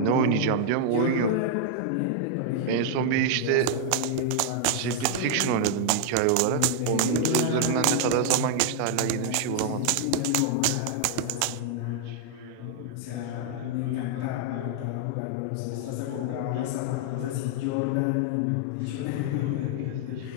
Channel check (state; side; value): different; both; correlation -0.01